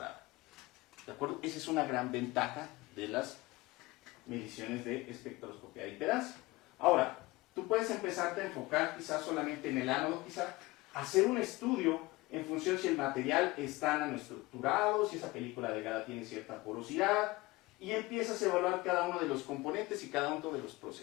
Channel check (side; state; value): right; quieter; 21.5 dB